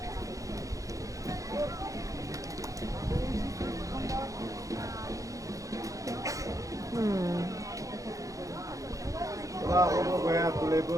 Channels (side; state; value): left; late; 0.16 ms